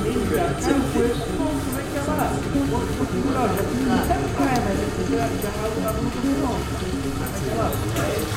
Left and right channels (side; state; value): both; identical; correlation 1.00